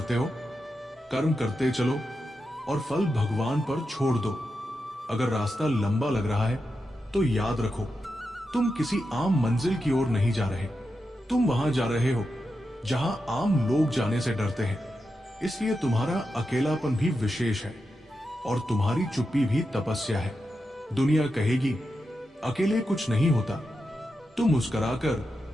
हो? कर्म करते चलो और फल भगवान पर छोड़ दो। अगर रास्ता लंबा लग रहा है तो याद रखो, तुम किसी आम मंजिल की ओर नहीं जा रहे। तुम वहां जा रहे हो जहां आम लोग जाने से डरते हैं। इसलिए तुम्हारा अकेलापन भी विशेष है और तुम्हारी चुप्पी भी तपस्या है। दुनिया कहेगी अकेले कुछ नहीं होता। तुम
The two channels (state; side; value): normal; both; correlation 0.88